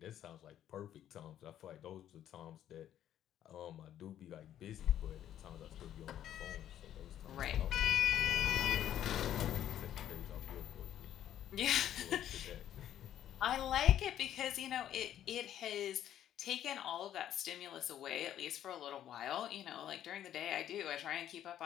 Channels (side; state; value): right; quieter; 11.2 dB